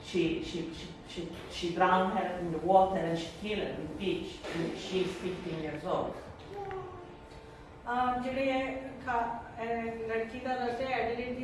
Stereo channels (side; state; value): both; identical; correlation 1.00